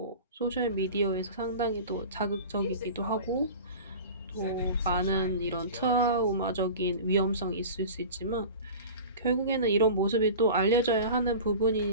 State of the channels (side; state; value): both; inverted; correlation -0.36